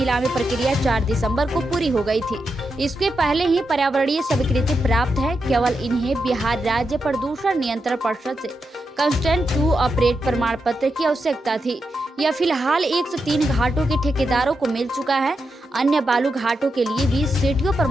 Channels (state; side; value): normal; both; correlation 0.86